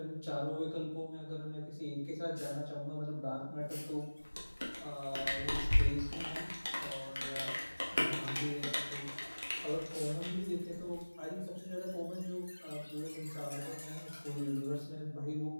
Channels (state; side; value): inverted; both; correlation -1.00